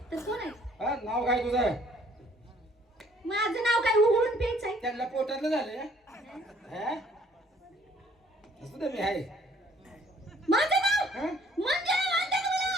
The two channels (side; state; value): both; normal; correlation 0.60